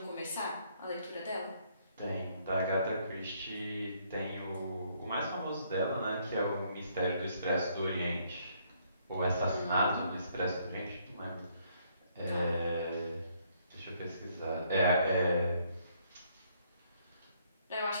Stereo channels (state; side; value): inverted; both; correlation -0.68